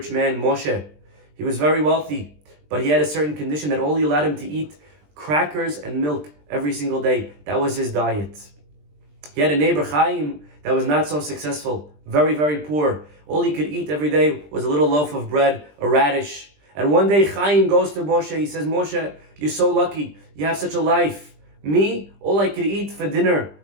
man, Moshe. He was very wealthy, but he had a certain condition that only allowed him to eat crackers and milk every single day. That was his diet. He had a neighbor, Chaim, that was not so successful, very, very poor. All he could eat every day was a little loaf of bread, a radish. And one day Chaim goes to Moshe, he says, Moshe, you're so lucky, you have such a life. Me, all I could eat for dinner,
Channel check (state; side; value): late; left; 20 ms